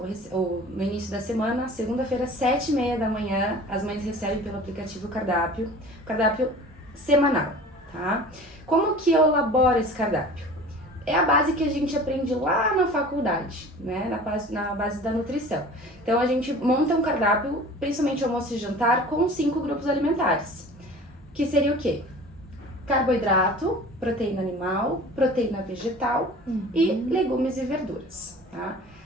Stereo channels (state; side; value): normal; both; correlation 0.42